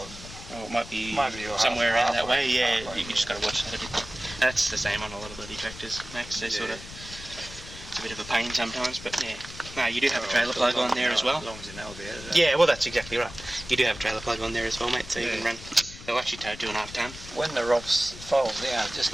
it might be somewhere around that way, you just got to watch that a bit. That's the same on a lot of bloody tractors, Max. They sort of, it's a bit of a pain sometimes, but yeah. No, you do have a trailer plug on there as well. As long as you know about it. Yeah, well that's exactly right. You do have a trailer plug on there as well, mate, so you can run. They'll actually tow 2.5 ton. When the ROPS folds down, just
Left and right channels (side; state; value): left; noise; rumble, 14 dB below the sound